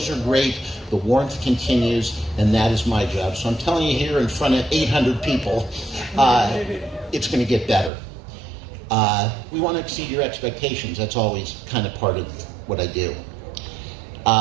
are great, the warmth continues, and that is my job. So I'm telling you here in front of 800 people, it's going to get better. We want to exceed your expectations. That's always kind of part of what I do.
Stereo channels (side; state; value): left; drops out; at 7.9 s